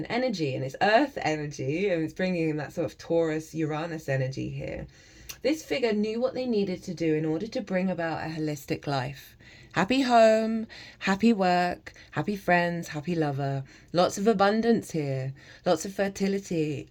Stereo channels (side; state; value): both; identical; correlation 1.00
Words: energy and it's earth energy, and it's bringing in that sort of Taurus Uranus energy here. This figure knew what they needed to do in order to bring about a holistic life. Happy home, happy work, happy friends, happy lover. Lots of abundance here, lots of fertility.